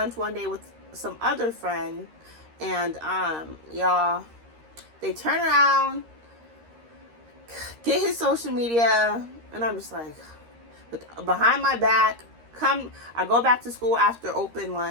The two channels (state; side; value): late; left; 13 ms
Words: one day with some other friend, and y'all, they turn around, get his social media, and I'm just like, behind my back, I go back to school after